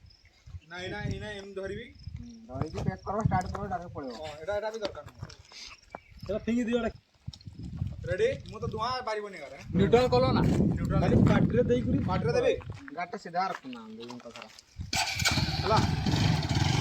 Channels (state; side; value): identical; both; correlation 1.00